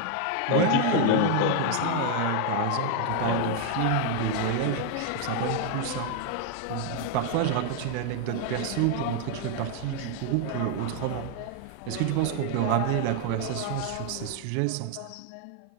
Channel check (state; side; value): different; both; correlation 0.00